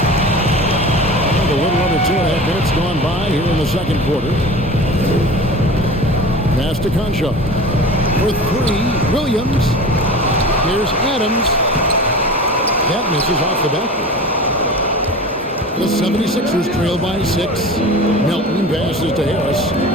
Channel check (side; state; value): both; normal; correlation 0.35